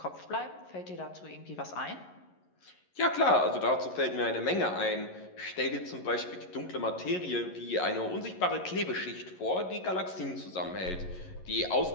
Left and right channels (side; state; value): right; late; 11 ms